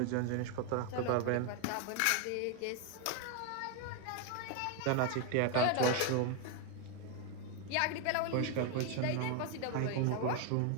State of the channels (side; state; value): both; different; correlation 0.01